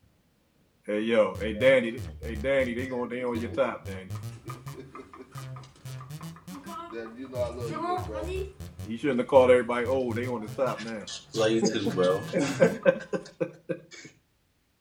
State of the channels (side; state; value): both; identical; correlation 1.00